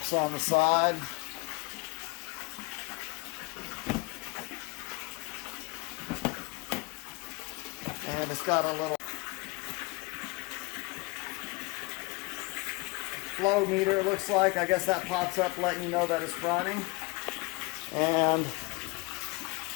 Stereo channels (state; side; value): quieter; right; 26.5 dB